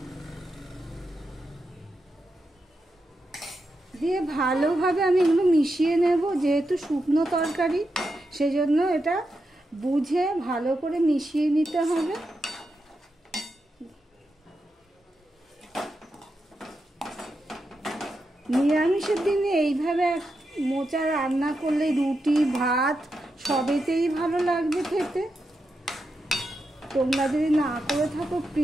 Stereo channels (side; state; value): both; normal; correlation 0.87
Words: দিয়ে ভালোভাবে আমি এগুলো মিশিয়ে নেব। যেহেতু শুকনো তরকারি সেজন্য এটা বুঝে ভালো করে মিশিয়ে নিতে হবে। নিরামিষের দিনে এইভাবে মোচা রান্না করলে রুটি ভাত সবেতেই ভালো লাগবে খেতে। তোমরা যদি না করে থাকো